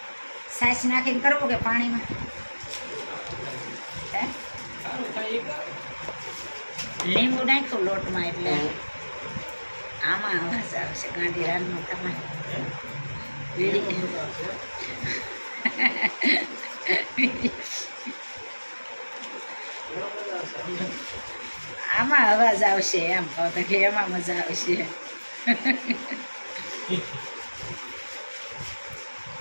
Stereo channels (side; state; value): both; inverted; correlation -1.00